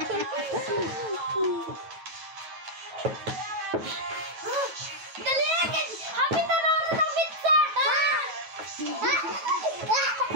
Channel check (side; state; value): left; late; 9.1 ms